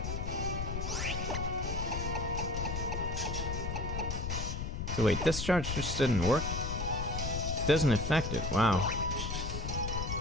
So wait, discharge just didn't work? Doesn't affect it, wow.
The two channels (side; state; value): left; noise; rumble, 3 dB below the sound